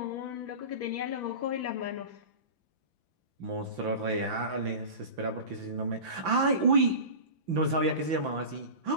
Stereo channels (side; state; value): left; late; 5.9 ms